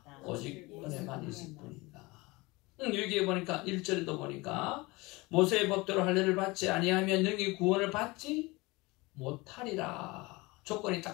오직 은혜만 있을 뿐이다. 여기에 보니까 1절에도 보니까 모세의 법대로 할례를 받지 아니하면 능히 구원을 받지 못하리라. 조건이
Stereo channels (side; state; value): right; quieter; 23.3 dB